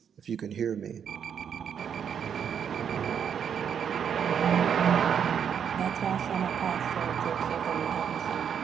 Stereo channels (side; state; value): left; quieter; 7.9 dB